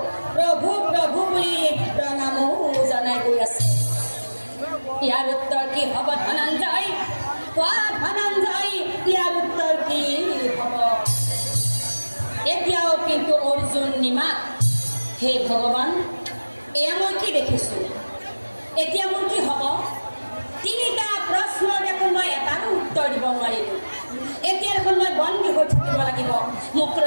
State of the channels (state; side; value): inverted; both; correlation -1.00